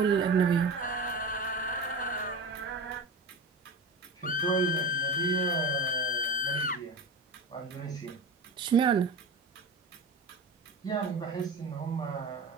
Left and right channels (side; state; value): left; quieter; 3.0 dB